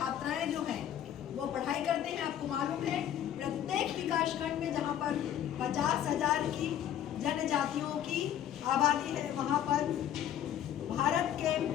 जो हैं वो पढ़ाई करते हैं। आपको मालूम है प्रत्येक विकास खंड में जहां पर 50,000 की जनजातियों की आबादी है, वहां पर भारत के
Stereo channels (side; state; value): right; quieter; 10.6 dB